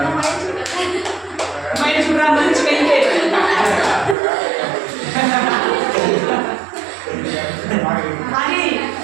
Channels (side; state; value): left; drops out; at 4.2 s